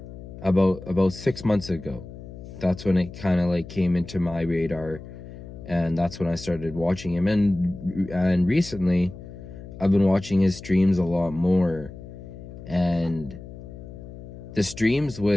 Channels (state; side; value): noise; left; hum, 14 dB below the sound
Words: about 6 months ago. That's when it kind of like came into my radar, and that's when I started watching him. And recently I've been watching his streams a lot more, and the streams